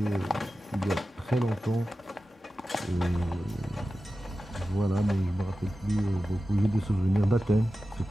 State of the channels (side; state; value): both; normal; correlation 0.94